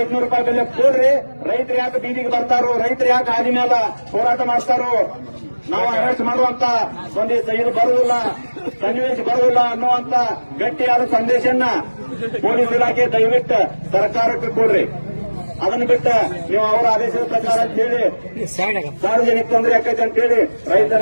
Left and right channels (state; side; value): inverted; both; correlation -1.00